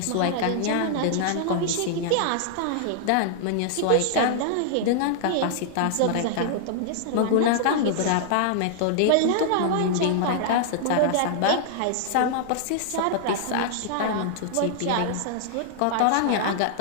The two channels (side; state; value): both; different; correlation -0.01